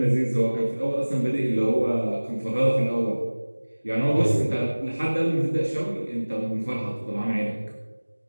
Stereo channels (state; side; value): inverted; both; correlation -1.00